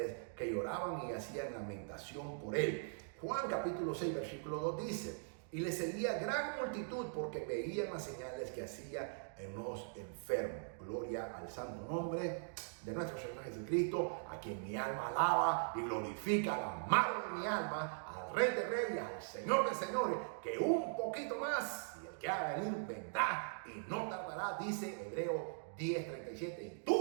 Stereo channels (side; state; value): left; silent; digital silence